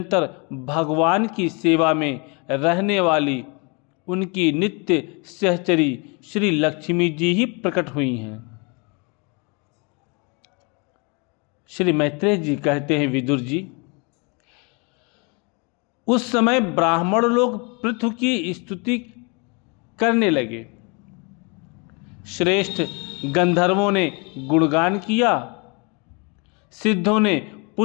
भगवान की सेवा में रहने वाली उनकी नित्य सहचरी श्री लक्ष्मी जी ही प्रकट हुई हैं। श्री मैत्रेय जी कहते हैं, विदुर जी, उस समय ब्राह्मण लोग पृथु की स्तुति करने लगे। श्रेष्ठ गंधर्वों ने गुणगान किया, सिद्धों ने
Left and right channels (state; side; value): quieter; right; 31.9 dB